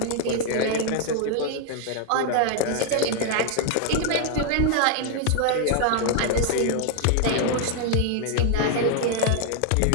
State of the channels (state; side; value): different; both; correlation 0.00